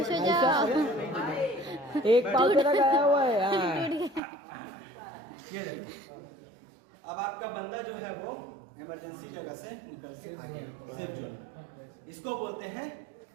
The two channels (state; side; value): drops out; left; at 4.2 s